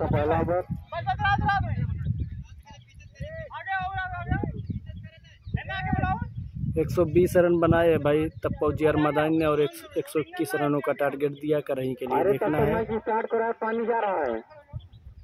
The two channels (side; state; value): both; identical; correlation 1.00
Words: 120 रन बनाए है भाई तप्पा उजियार मैदान ने और 121 रनों का टारगेट दिया करही के लिए। देखना है पानी जा रहा है।